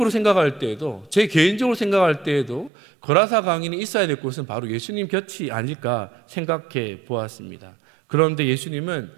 생각할 때에도, 제 개인적으로 생각할 때에도 거라사 광인이 있어야 될 곳은 바로 예수님 곁이 아닐까 생각해 보았습니다. 그런데 예수님은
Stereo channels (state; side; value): drops out; left; at 2.7 s